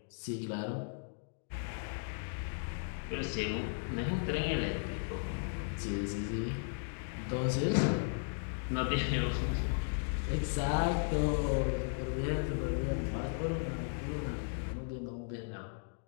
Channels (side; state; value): right; silent; digital silence